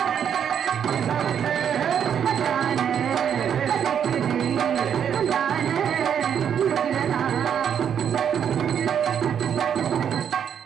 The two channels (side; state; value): left; quieter; 8.4 dB